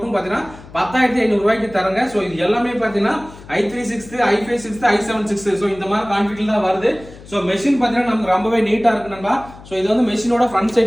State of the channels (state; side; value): noise; left; hum, 19 dB below the sound